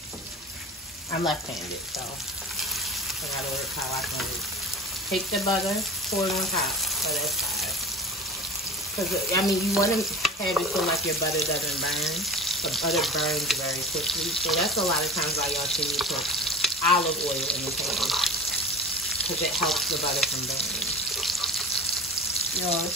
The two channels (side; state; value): both; normal; correlation 0.34